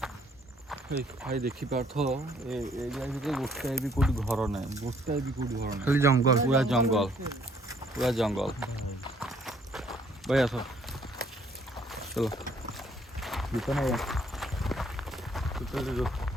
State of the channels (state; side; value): normal; both; correlation 0.64